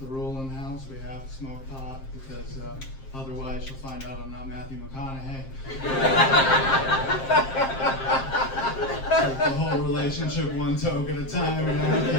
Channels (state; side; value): late; right; 7.5 ms